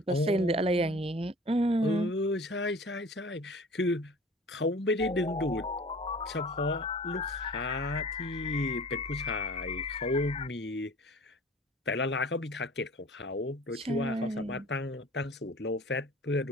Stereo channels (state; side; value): normal; both; correlation 0.44